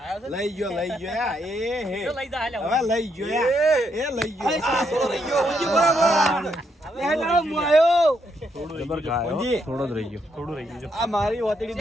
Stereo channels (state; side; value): normal; both; correlation 0.77